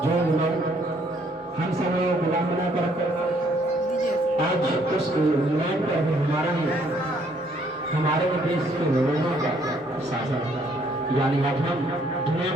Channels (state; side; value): normal; both; correlation 0.66